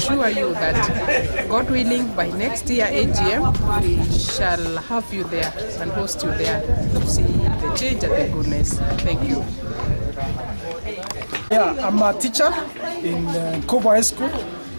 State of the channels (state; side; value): inverted; both; correlation -1.00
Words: you that, God willing, by next year AGM, we shall have you there and host you there to see the change and the goodness. Thank you. Yeah, I'm a teacher in Nkubu High School,